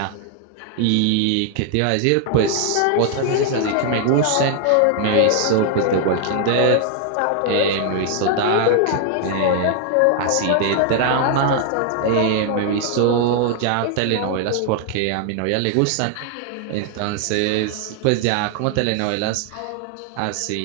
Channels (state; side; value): different; both; correlation 0.00